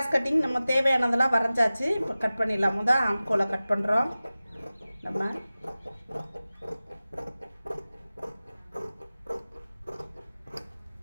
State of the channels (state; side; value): inverted; both; correlation -0.97